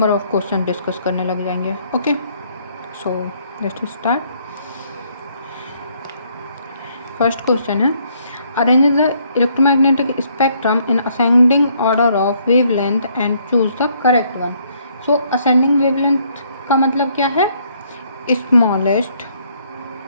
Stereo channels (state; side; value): inverted; both; correlation -0.68